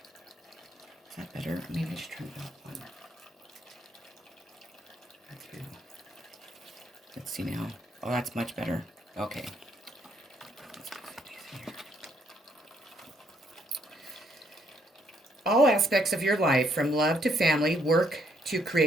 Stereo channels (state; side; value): normal; both; correlation 0.71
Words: Is that better? Maybe I should turn it up one. That's good. Let's see now. Oh, that's much better. Okay. All aspects of your life, from love to family, work to